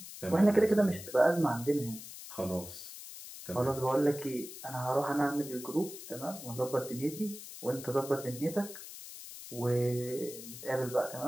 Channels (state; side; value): noise; left; hiss, 13 dB below the sound